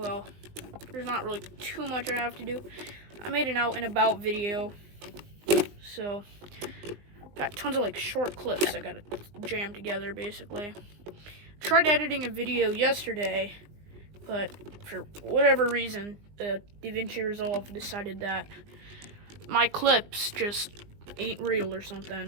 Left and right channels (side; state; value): left; late; 20 ms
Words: there's not really too much I have to do. I made an out and about video, so got tons of like short clips I gotta jam together basically. Tried editing a video yesterday, but for whatever reason, the DaVinci Resolve decided that my clips just ain't real or